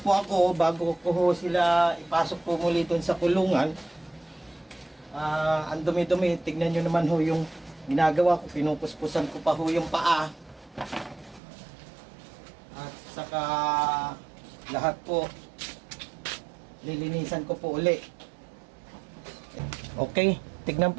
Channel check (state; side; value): drops out; left; at 11.4 s